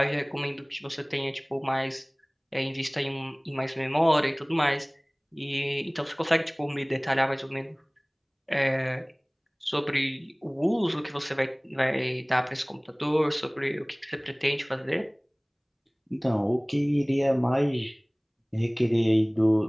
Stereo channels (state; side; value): identical; both; correlation 1.00